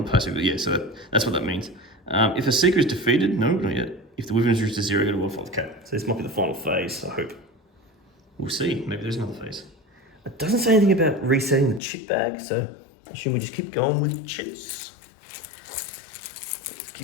passive. Yeah, so that's what that means. If a Seeker is defeated, no, not yet. If the Wyvern is reduced to 0, go to 1-5. Okay, so this might be the final phase, I hope. We'll see. Maybe there's another phase. It doesn't say anything about resetting the chit bag, so I assume we just keep going with chits. Let's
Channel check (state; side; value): drops out; right; at 11.8 s